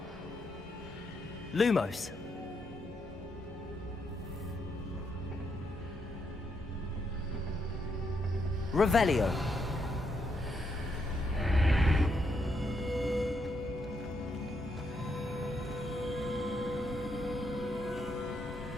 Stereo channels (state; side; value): normal; both; correlation 0.78